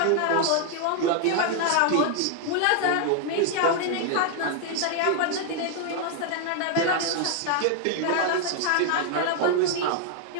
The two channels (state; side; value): different; both; correlation 0.00